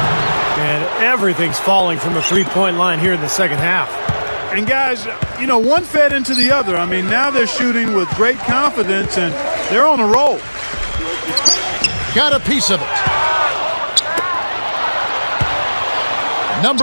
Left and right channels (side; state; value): both; inverted; correlation -1.00